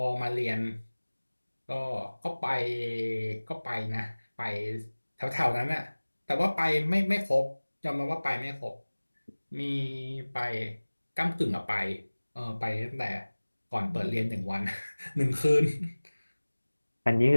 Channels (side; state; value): both; inverted; correlation -1.00